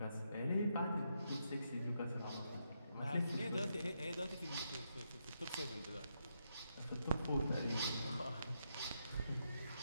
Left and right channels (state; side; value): inverted; both; correlation -0.81